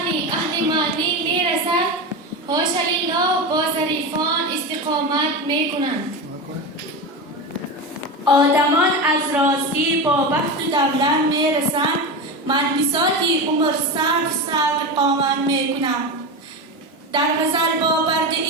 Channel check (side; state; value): both; normal; correlation 0.20